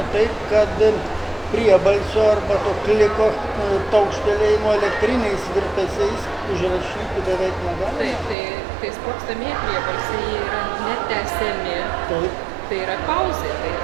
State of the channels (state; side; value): drops out; left; at 8.3 s